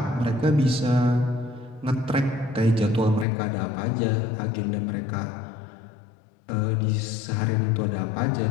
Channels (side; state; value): right; drops out; at 3.2 s